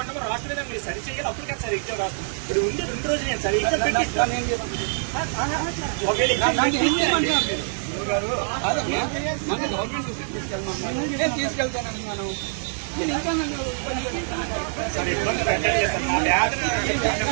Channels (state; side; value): silent; left; 62 dB below the other